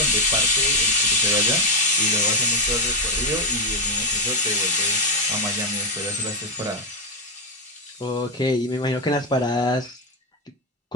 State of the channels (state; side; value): normal; both; correlation 0.06